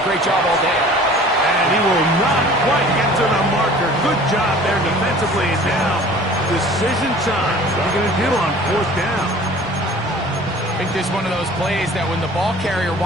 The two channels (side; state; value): both; normal; correlation 0.47